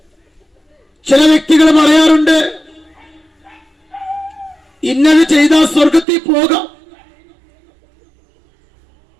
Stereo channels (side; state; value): left; drops out; at 6.1 s